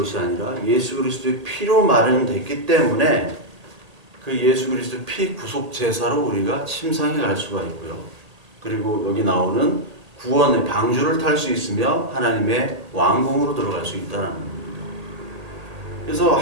아니라 예수 그리스도의 피로 마련됐기 때문에 그 예수 그리스도의 피 구속 제사로 우리가 침상에 갈 수가 있고요. 그리고 여기 나오는 구원의 방주를 탈 수 있으며 하나님의 왕궁으로 들어갈 수 있다는 겁니다. 그래서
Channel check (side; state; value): left; late; 1.8 ms